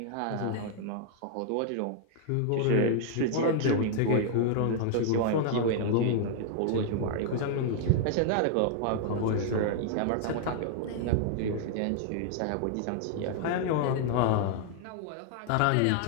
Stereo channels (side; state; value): both; different; correlation 0.00